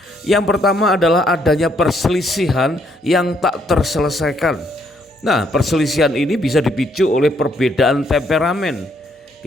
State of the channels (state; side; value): normal; both; correlation 0.71